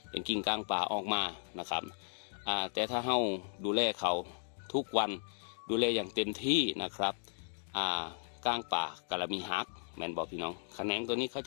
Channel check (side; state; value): right; silent; digital silence